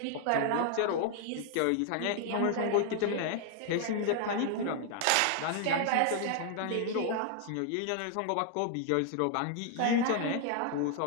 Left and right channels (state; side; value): different; both; correlation 0.00